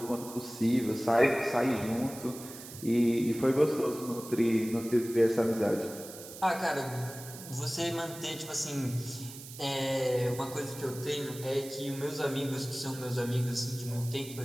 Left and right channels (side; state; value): right; noise; hiss, 14 dB below the sound